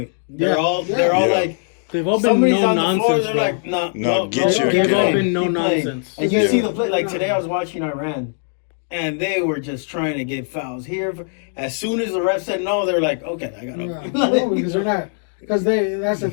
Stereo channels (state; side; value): silent; right; digital silence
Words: They're Yeah. all Yeah. like they've all been somebody's no on the floor. nonsense. They're bro. like, no, No, get your- They've all play. been no Keep playing. nonsense. And you Yeah. see the play. Like today, I was watching Iran, and they were just trying to get fouls here. As soon as the ref said no, they're like, okay, I got Yeah. to. No, because they're not. Because that's the